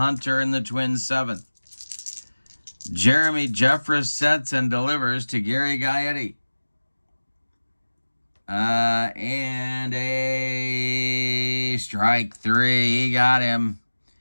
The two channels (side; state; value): both; inverted; correlation -1.00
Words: in the Twins' 7th. Jeremy Jeffress sets and delivers to Gary Gaetti. And a strike 3. He got him.